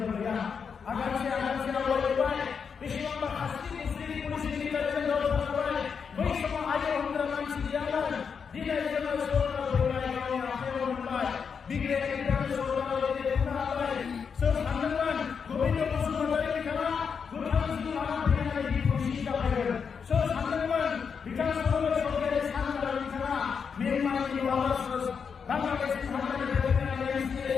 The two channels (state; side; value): quieter; right; 6.2 dB